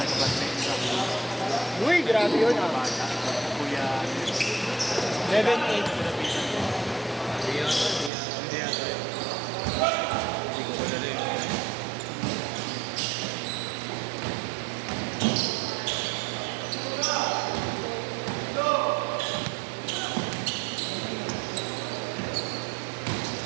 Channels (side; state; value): left; drops out; at 8.1 s